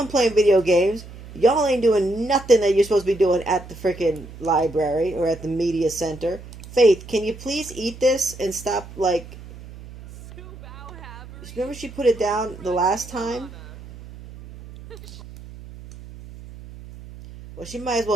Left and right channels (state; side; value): noise; right; hum, 16 dB below the sound